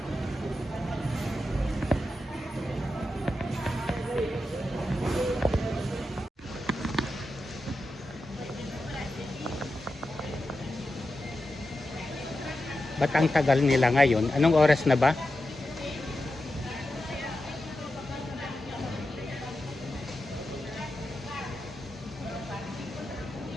Ba't ang tagal nila ngayon? Anong oras na ba?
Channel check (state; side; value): normal; both; correlation 0.90